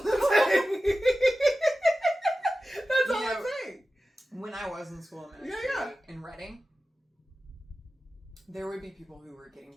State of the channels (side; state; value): both; normal; correlation 0.94